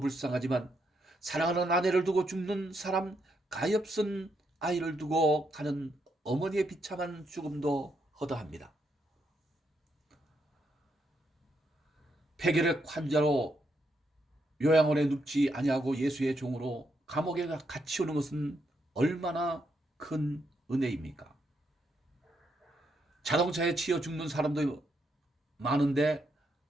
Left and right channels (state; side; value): normal; both; correlation 0.78